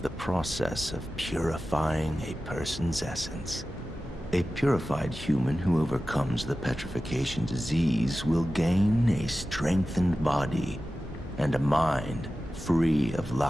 process of purifying a person's essence. A purified human who overcomes the petrification disease will gain a strengthened body and a mind free of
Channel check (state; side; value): normal; both; correlation 0.95